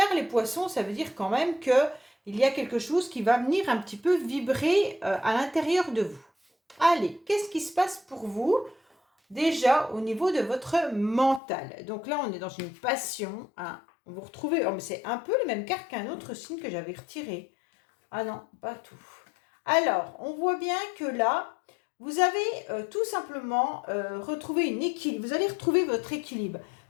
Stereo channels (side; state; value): right; drops out; at 11.4 s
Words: les poissons, ça veut dire quand même qu'il y a quelque chose qui va venir un petit peu vibrer à l'intérieur de vous. Allez, qu'est-ce qui se passe pour vous? Déjà au niveau de votre mental. Donc là, on est dans une passion. Hein. Vous retrouvez, oh, mais c'est un peu les mêmes cartes qu'un autre signe que j'avais retiré. Ah non, pas tout. Alors, on voit bien que là, vous avez tout simplement retrouvé une équilibre. Vous allez retrouver votre équilibre